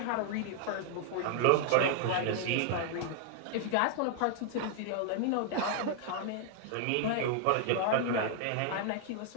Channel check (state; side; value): different; both; correlation 0.00